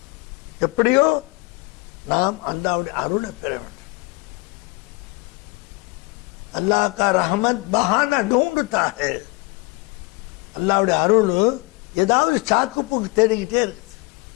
எப்படியோ நாம் அல்லாஹ்வுடைய அருளை பெற வேண்டும். அல்லாஹ் கா ரஹமத் பஹானா ढूंढता है. அல்லாஹ்வுடைய அருள் ஏதாவது சாக்குப்போக்கு தேடிக்கிட்டே இருக்குது.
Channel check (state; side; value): quieter; right; 25.2 dB